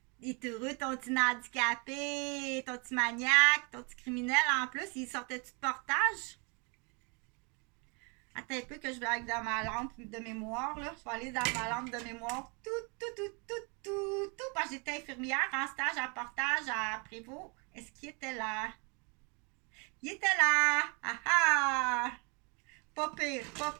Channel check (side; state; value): left; quieter; 33.3 dB